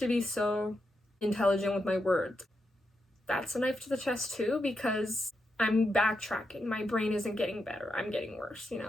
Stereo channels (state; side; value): normal; both; correlation 0.85